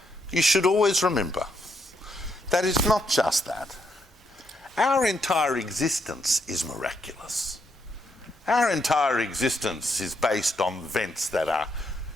You should always remember that it's not just that. Our entire existence is miraculous. Our entire existence is based on events that are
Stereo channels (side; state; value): both; normal; correlation 0.77